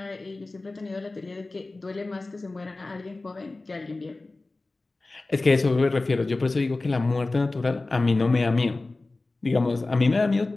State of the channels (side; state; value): right; quieter; 3.2 dB